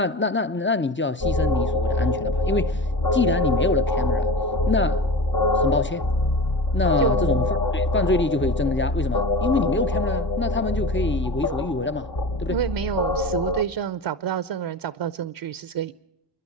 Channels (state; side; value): normal; both; correlation 0.31